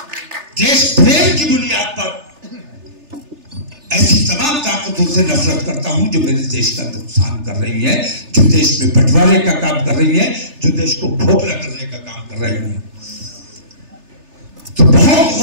देश प्रेम की बुनियाद पर ऐसी तमाम ताकतों से नफरत करता हूं जो मेरे देश का नुकसान कर रही है, जो देश में बंटवारे का काम कर रही है, जो देश को खोखला करने का काम कर रही है। तो बहुत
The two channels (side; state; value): left; late; 3.3 ms